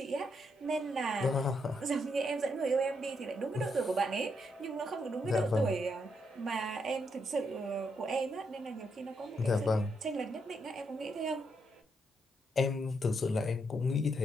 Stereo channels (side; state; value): both; normal; correlation 0.79